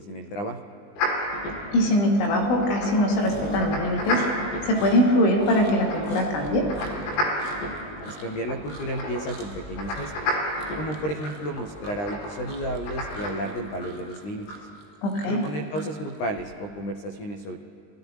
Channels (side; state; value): right; late; 20 ms